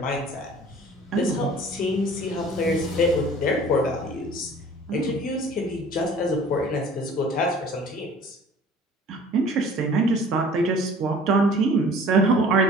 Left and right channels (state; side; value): normal; both; correlation 0.48